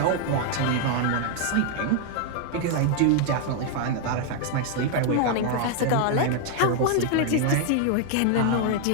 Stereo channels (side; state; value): both; different; correlation 0.00